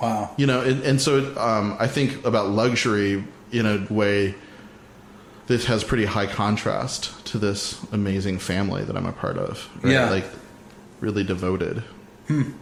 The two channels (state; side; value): identical; both; correlation 1.00